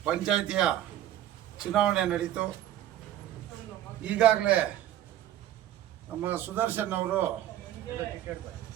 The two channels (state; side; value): quieter; left; 12.2 dB